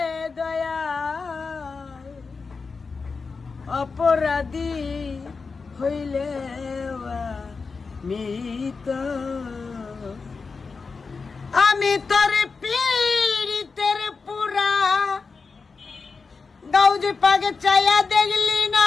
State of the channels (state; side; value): quieter; right; 4.6 dB